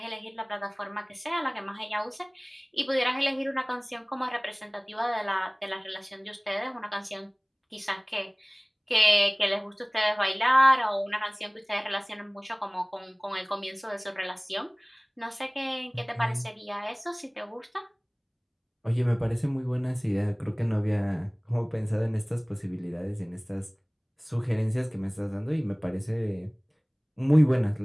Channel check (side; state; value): both; identical; correlation 1.00